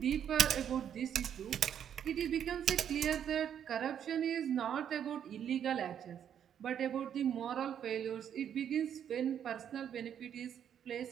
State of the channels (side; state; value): left; quieter; 9.1 dB